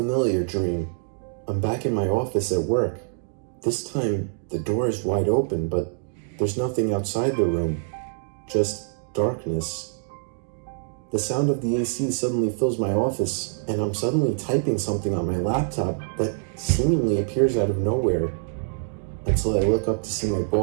dream. I'm back in my office at work. This time, the door is wide open, but there's nothing outside the room, just darkness. The sound of the AC suddenly fills my office, and I'm suddenly typing something on my laptop that seemingly appears out of nowhere, until I look up to see my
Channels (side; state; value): left; silent; digital silence